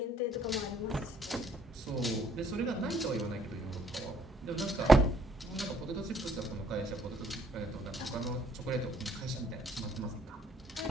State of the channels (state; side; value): normal; both; correlation 0.65